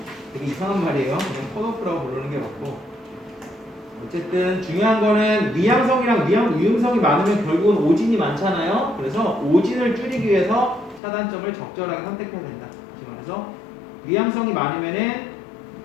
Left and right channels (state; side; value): drops out; right; at 11.0 s